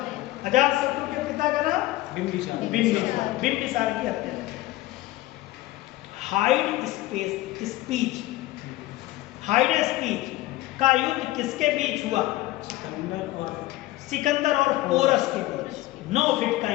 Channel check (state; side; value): quieter; right; 17.3 dB